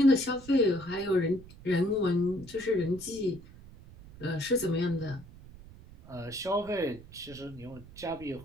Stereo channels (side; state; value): right; noise; rumble, 19 dB below the sound